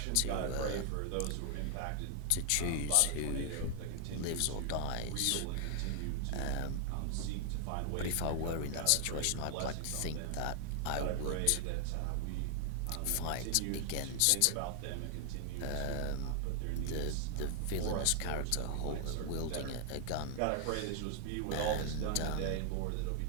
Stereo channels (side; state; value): both; different; correlation 0.00